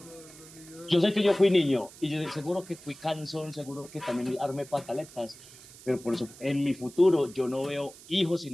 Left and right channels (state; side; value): noise; right; hiss, 19 dB below the sound